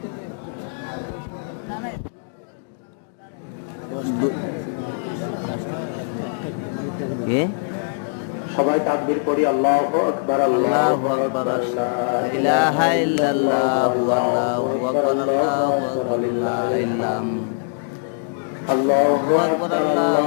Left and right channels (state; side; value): silent; right; digital silence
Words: সবাই তাকবীর করি, আল্লাহু আকবার, আল্লাহু আকবার, লা ইলাহা ইল্লাল্লাহু আল্লাহু আকবার, আল্লাহু আকবার, লা আল্লাহু আকবার,